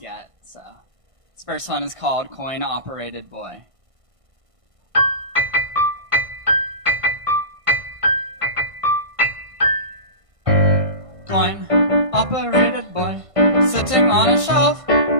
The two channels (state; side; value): late; left; 1.5 ms